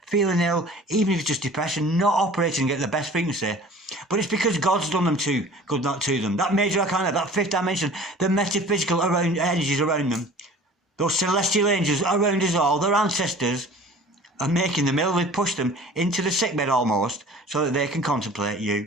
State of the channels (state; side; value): normal; both; correlation 0.45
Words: feeling ill, even if it's just depression, not operating at the best frequency. But it's because God's done them good not to them. That major arcana, that fifth dimension, the metaphysical energies around them, those celestial angels around us all, their ancestors, are making them ill. They push them into the sickbed almost, so that they can contemplate